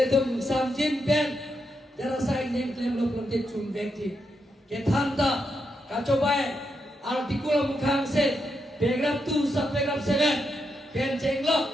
tuh samjin pen, jara saing yang klaim lo belum dicun bekti. Ketanta, kacau baik, artikel mukhang se, paragraph 2 sub paragraph 7, pen cenglo,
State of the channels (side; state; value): both; normal; correlation 0.83